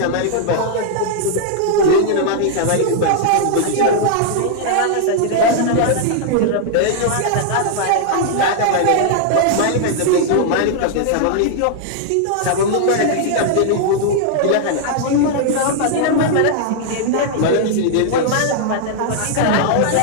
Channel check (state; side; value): different; both; correlation -0.01